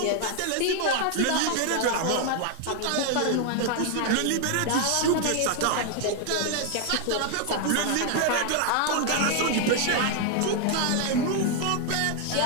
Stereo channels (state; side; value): different; both; correlation 0.00